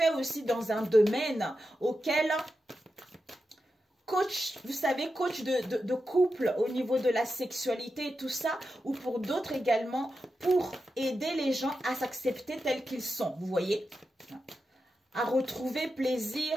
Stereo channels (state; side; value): normal; both; correlation 0.89